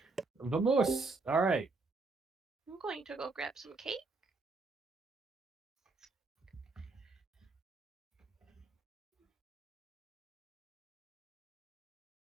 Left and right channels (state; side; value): quieter; left; 3.7 dB